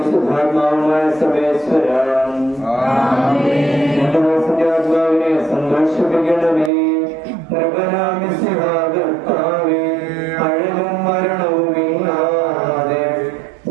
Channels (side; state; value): left; drops out; at 6.7 s